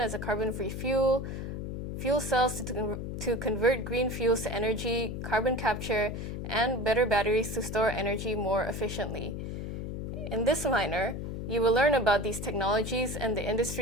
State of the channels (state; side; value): noise; left; hum, 5 dB below the sound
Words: as a carbon-free fuel, fuel cells to convert green fuels to energy, carbon capture, and better batteries to store energy more efficiently. In this minor, you will learn about these technologies and the